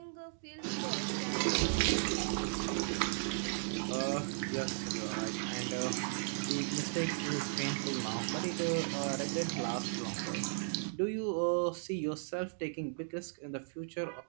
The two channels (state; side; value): silent; left; digital silence